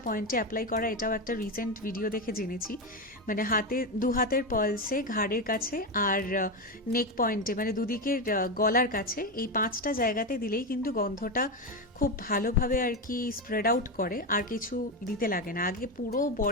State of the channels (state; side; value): normal; both; correlation 0.13